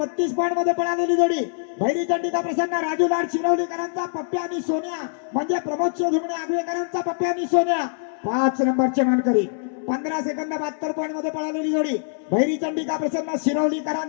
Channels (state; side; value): silent; right; 63 dB below the other